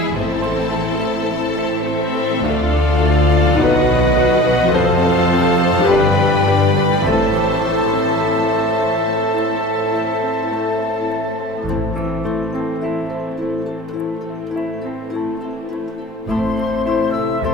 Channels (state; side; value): normal; both; correlation 0.42